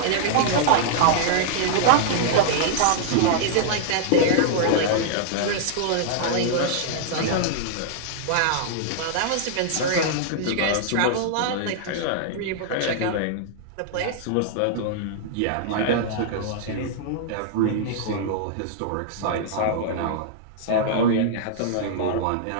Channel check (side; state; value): both; different; correlation -0.01